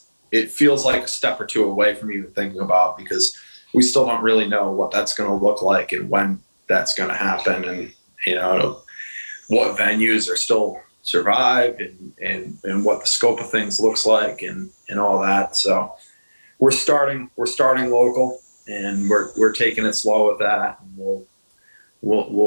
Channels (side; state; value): both; inverted; correlation -1.00